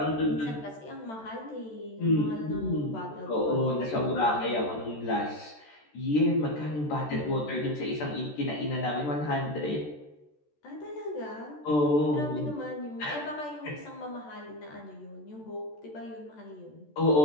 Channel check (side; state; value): right; late; 14 ms